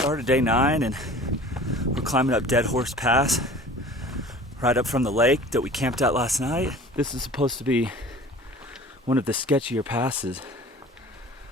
day 9 and we're climbing up Dead Horse Pass, right up from the lake that we camped at last night. This is supposed to be one of the sketchier passes,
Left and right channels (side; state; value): both; normal; correlation 0.44